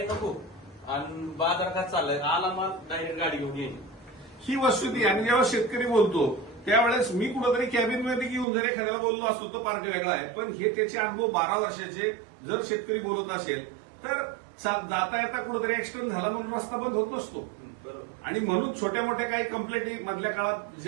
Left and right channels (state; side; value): drops out; left; at 8.5 s